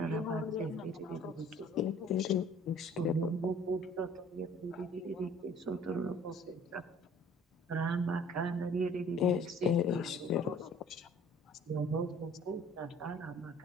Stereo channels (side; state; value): both; normal; correlation 0.52